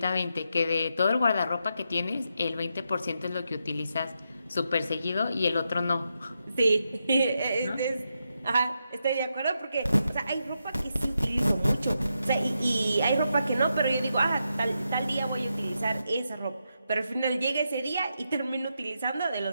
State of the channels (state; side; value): inverted; both; correlation -0.84